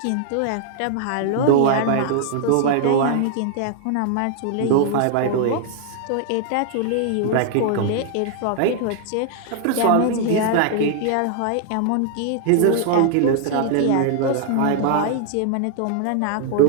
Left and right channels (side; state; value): both; different; correlation 0.00